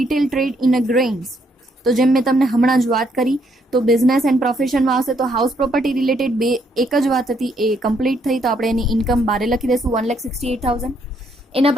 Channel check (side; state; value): both; normal; correlation 0.71